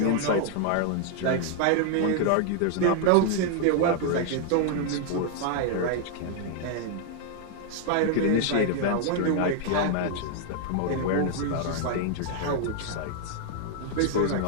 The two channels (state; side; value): different; both; correlation 0.00